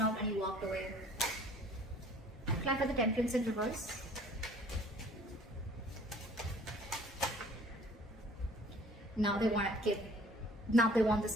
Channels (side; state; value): both; normal; correlation 0.53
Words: out and you walked away. Clap for the Temperance in reverse. Now they want to give. Now they want